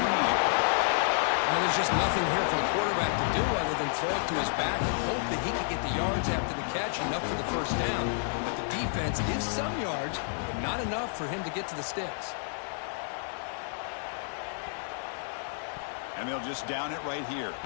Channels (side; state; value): right; silent; 58 dB below the other